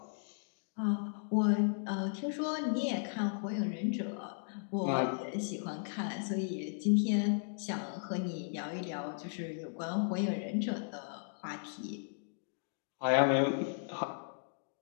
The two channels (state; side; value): silent; right; digital silence